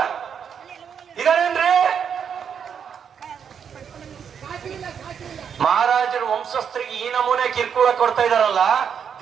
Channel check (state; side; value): quieter; left; 7.5 dB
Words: ಇದಾರೇನ್ರಿ? ಮಹಾರಾಜರ ವಂಶಸ್ಥರಿಗೆ ಈ ನಮೂನೆ ಕಿರ್ಕುಳ ಕೊಡ್ತಾ ಇದಾರಲ್ಲ,